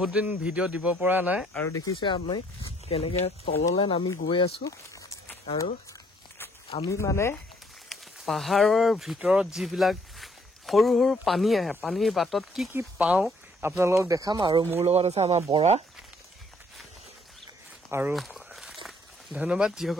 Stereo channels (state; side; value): normal; both; correlation 0.64